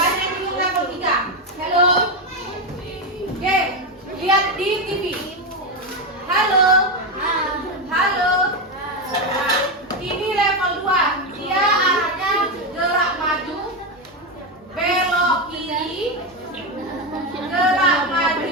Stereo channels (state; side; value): normal; both; correlation 0.10